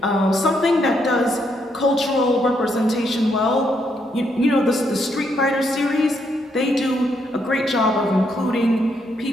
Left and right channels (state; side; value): normal; both; correlation 0.76